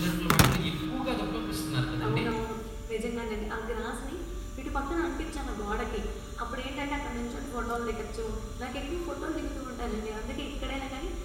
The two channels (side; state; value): both; identical; correlation 1.00